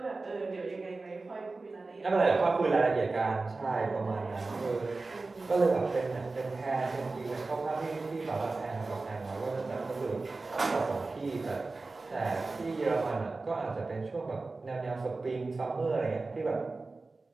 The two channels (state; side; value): quieter; left; 3.6 dB